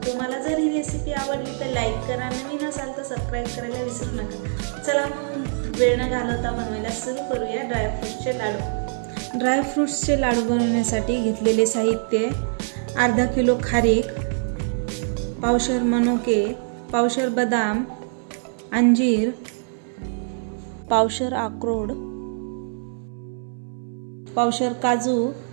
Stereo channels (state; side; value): silent; left; 63 dB below the other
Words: तुम्हाला जर ही रेसिपी आवडली तर लाईक करा, नवीन असाल तर सबस्क्राईब करायला विसरू नका। चला मग वेळ न घालवता बनवायला सुरू करूया ड्रायफ्रुट्सचे लाडू। ड्रायफ्रुट्सचे लाडू बनवण्यासाठी घेतलेले साहित्य: अर्धा किलो खारीक, पावशर मनुके, पावशर बदाम, अंजीर, पावशर अक्रोड, पावशर काजू,